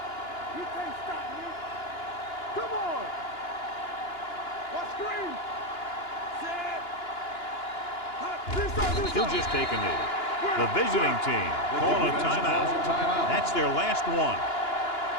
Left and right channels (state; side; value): late; right; 2.9 ms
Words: You can't stop me. Come on. Watch screen. Set. He'll just take a knee. The visiting team calling a timeout. That's their last one.